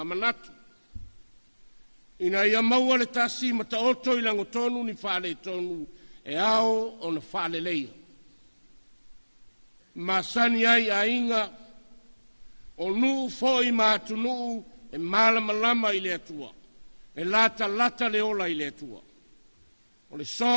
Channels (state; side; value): inverted; both; correlation -1.00